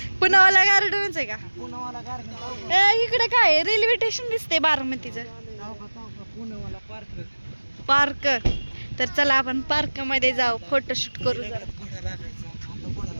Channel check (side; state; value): both; inverted; correlation -1.00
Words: पुनावाला गार्डनच आहे का? इकडे काय रेल्वे स्टेशन दिसते बारामतीचं. पार्क. तर चला आपण पार्क मध्ये जाऊ, फोटोशूट करू जरा.